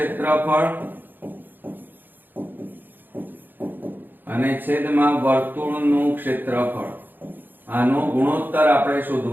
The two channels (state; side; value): late; left; 0.091 ms